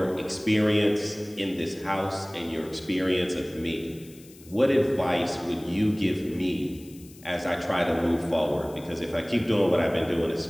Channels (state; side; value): noise; left; hiss, 23 dB below the sound